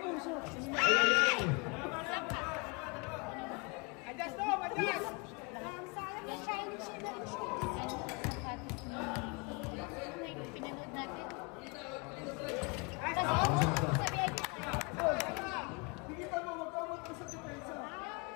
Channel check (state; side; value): quieter; right; 31.0 dB